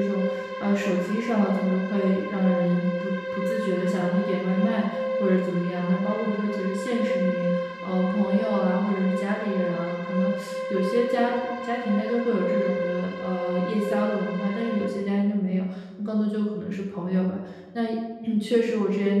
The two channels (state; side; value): identical; both; correlation 1.00